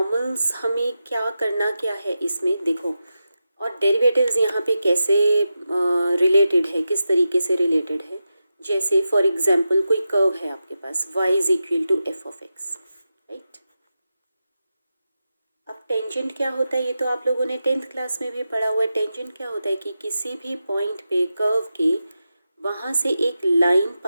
हमें क्या है इसमें देखो, और डेरिवेटिव्स यहाँ पे कैसे रिलेटेड है, किस तरीके से रिलेटेड है। जैसे फॉर एग्जांपल कोई कर्व है आपके पास y is equal to F of X, right. अब टेंजेंट क्या होता है ये तो आप लोगों ने 10th क्लास में भी पढ़ा हुआ है। टेंजेंट क्या होता है कि किसी भी पॉइंट पे कर्व के वहाँ से एक लाइन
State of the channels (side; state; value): both; inverted; correlation -0.90